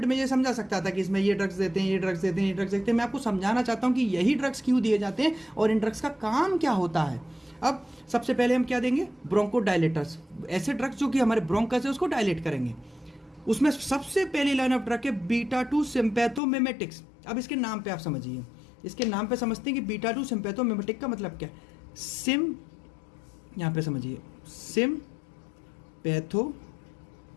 में ये समझा सकता था कि इसमें ये ड्रग्स देते हैं, ये ड्रग्स देते हैं, ये ड्रग्स देते हैं। मैं आपको समझाना चाहता हूँ कि यही ड्रग्स क्यों दिए जाते हैं और इन ड्रग्स का काम क्या होता है। अब सबसे पहले हम क्या देंगे, ब्रोंको डायलेटर्स, ऐसे ड्रग्स जो कि हमारे ब्रोंकस है उसको डायलेट करेंगे। उसमें सबसे पहली लाइन ऑफ ड्रग है बीटा-2 सिम्पैथोमिमेटिक्स। अब इसके नाम पे आप समझिए, इसके नाम पे समझते हैं कि बीटा-2 सिम्पैथोमिमेटिक का मतलब क्या है। सिम, यहाँ पे समझिए, सिम्पैथोमिमेटिक।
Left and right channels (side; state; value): right; drops out; at 16.4 s